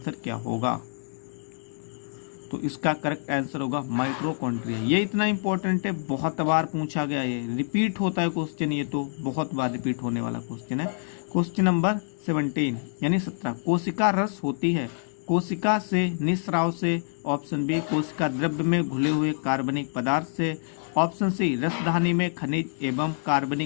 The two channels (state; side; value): silent; right; digital silence